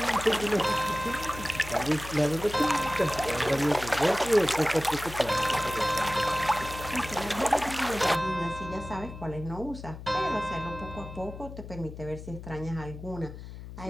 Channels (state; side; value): noise; left; hum, 12 dB below the sound